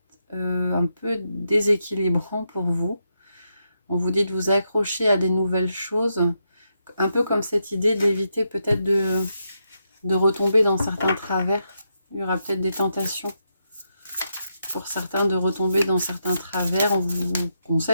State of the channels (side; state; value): both; inverted; correlation -0.83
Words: un peu déséquilibrant pour vous. On vous dit de vous accrocher à des nouvelles choses, un peu comme cette idée d'éviter peut-être de retomber dans certains travers. Il y aura peut-être des tentations pour certains de retomber dans certains travers. On vous